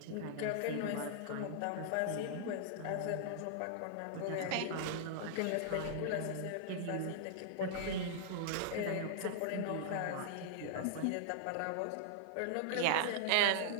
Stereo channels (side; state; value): both; different; correlation -0.01